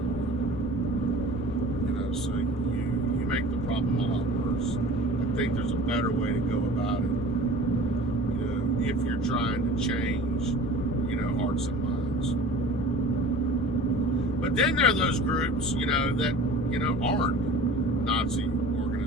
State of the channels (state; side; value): normal; both; correlation 0.41